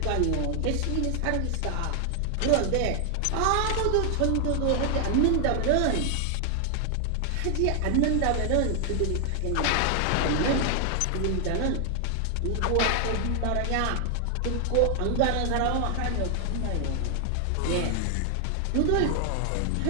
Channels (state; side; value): different; both; correlation 0.00